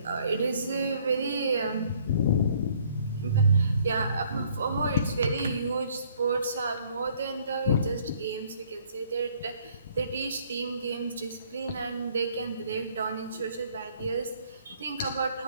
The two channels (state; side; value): inverted; both; correlation -0.61